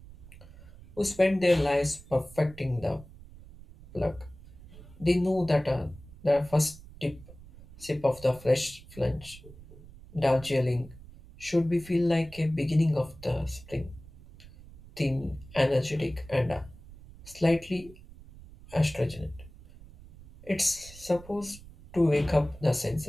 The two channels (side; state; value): right; noise; rumble, 19 dB below the sound